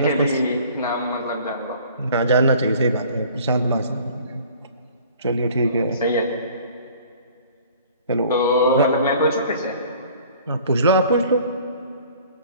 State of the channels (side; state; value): both; inverted; correlation -0.50